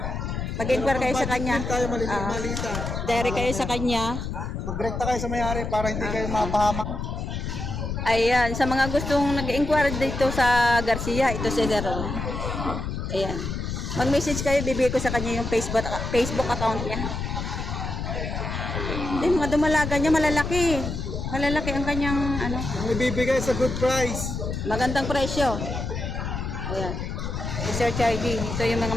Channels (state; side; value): noise; left; rumble, 4 dB below the sound